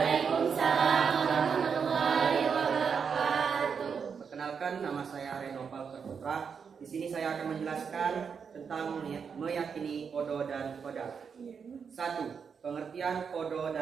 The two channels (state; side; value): quieter; left; 6.3 dB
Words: warahmatullahi wabarakatuh. Perkenalkan, nama saya Reno Falker Putra. Di sini saya akan menjelaskan tentang meyakini kodo dan kodar. 1. Pengertian kodo